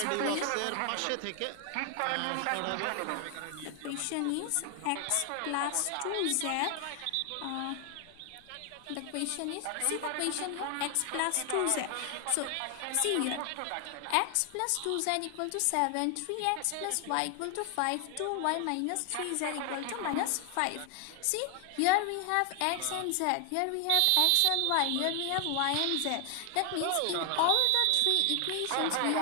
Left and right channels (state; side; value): different; both; correlation 0.00